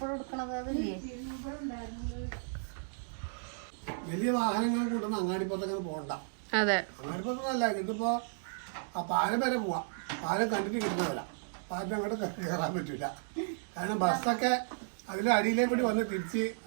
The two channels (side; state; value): left; silent; digital silence